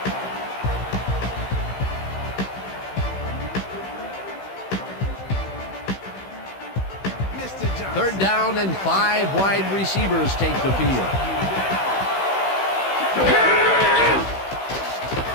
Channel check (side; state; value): right; late; 16 ms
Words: Third down and 5 wide receivers take the field.